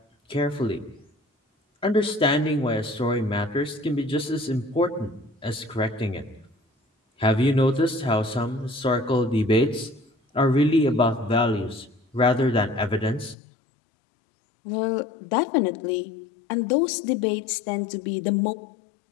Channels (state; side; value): drops out; right; at 13.4 s